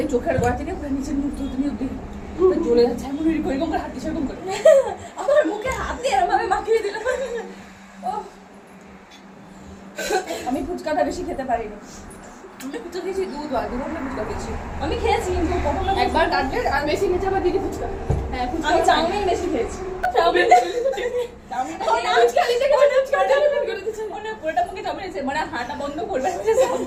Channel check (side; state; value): both; identical; correlation 1.00